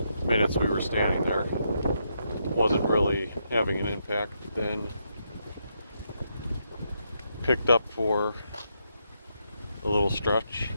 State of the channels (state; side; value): inverted; both; correlation -0.80